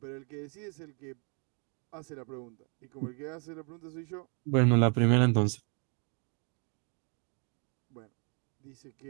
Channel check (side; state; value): left; quieter; 37.6 dB